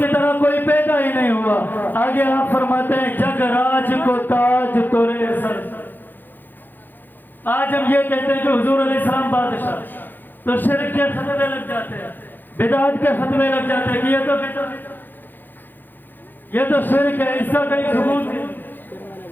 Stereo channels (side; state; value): right; late; 0.090 ms